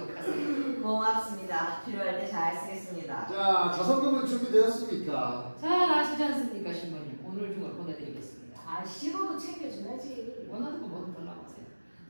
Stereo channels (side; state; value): both; inverted; correlation -1.00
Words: 하세요. 고맙습니다. 필요할 때 잘 쓰겠습니다. 자, 자선금은 준비되었습니까? 잘 아시지 않습니까, 신부님? 오늘 중을 보내드리겠습니다. 식어도 챙겨줘야지. 원하는 거 뭐든 달라고 하세요.